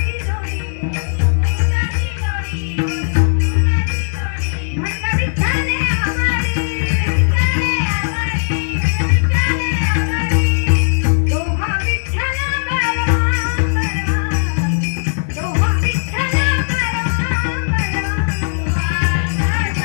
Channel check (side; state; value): right; silent; digital silence